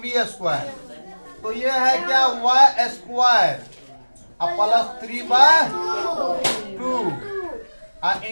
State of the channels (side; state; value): both; inverted; correlation -1.00